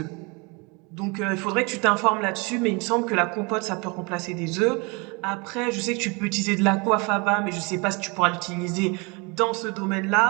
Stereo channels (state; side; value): quieter; left; 29.5 dB